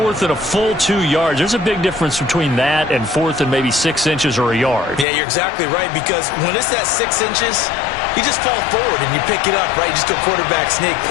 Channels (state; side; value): drops out; right; at 5.1 s